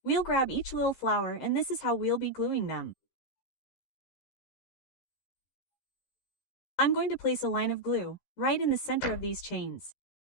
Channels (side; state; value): right; late; 13 ms